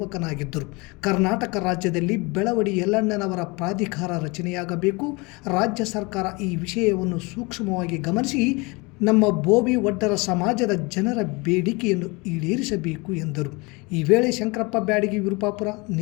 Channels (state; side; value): quieter; right; 26.7 dB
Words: ಕರ್ನಾಟಕ ರಾಜ್ಯದಲ್ಲಿ ಬೆಳವಡಿ ಯಲ್ಲಣ್ಣನವರ ಪ್ರಾಧಿಕಾರ ರಚನೆಯಾಗಬೇಕು. ರಾಜ್ಯ ಸರ್ಕಾರ ಈ ವಿಷಯವನ್ನು ಸೂಕ್ಷ್ಮವಾಗಿ ಗಮನಿಸಿ ನಮ್ಮ ಭೋವಿ ವಡ್ಡರ ಸಮಾಜದ ಜನರ ಬೇಡಿಕೆಯನ್ನು ಈಡೇರಿಸಬೇಕು ಎಂದರು. ಈ ವೇಳೆ ಶಂಕರಪ್ಪ ಬ್ಯಾಡಗಿ ವಿರುಪಾಪುರ,